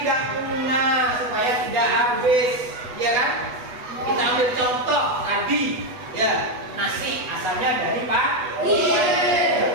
supaya tidak habis, ya kan? Kita ambil contoh tadi, ya, nasi asalnya dari padi.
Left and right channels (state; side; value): late; left; 8.2 ms